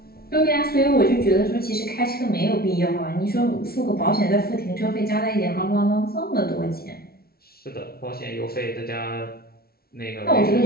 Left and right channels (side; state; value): right; late; 0.44 ms